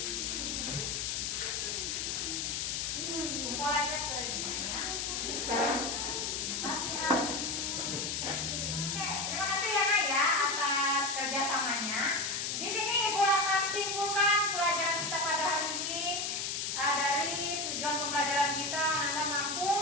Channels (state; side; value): noise; left; hiss, 1 dB below the sound